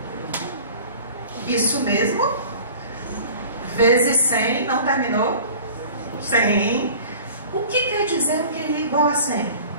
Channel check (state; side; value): inverted; both; correlation -0.44